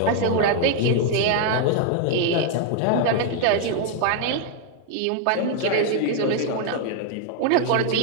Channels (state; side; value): different; both; correlation 0.00